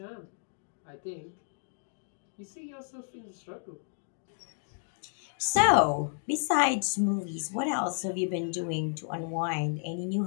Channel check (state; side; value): silent; right; digital silence